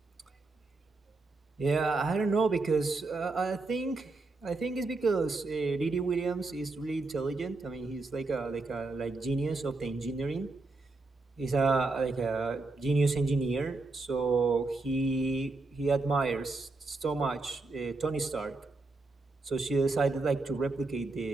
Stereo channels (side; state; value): left; quieter; 3.4 dB